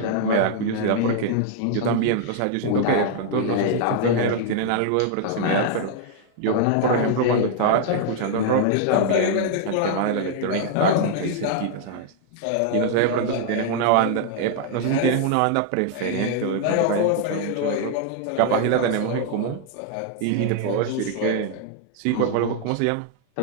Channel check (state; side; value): different; both; correlation 0.00